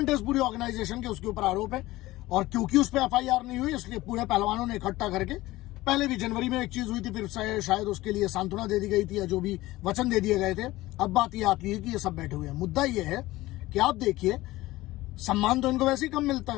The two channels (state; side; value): quieter; right; 18.0 dB